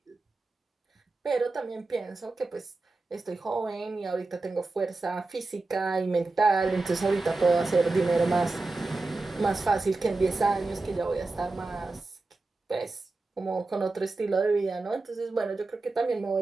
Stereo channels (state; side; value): quieter; left; 3.4 dB